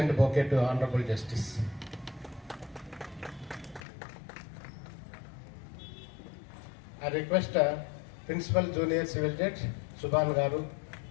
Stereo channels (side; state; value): right; drops out; at 3.8 s